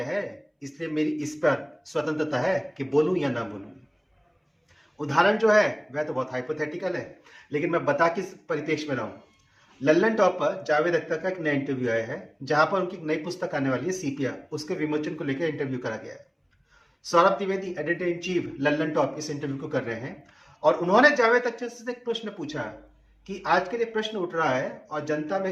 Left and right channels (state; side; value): identical; both; correlation 1.00